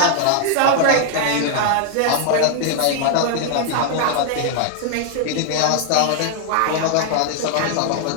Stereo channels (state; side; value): different; both; correlation 0.00